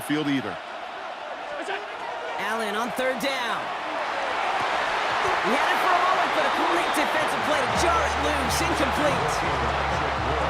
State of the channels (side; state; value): both; identical; correlation 1.00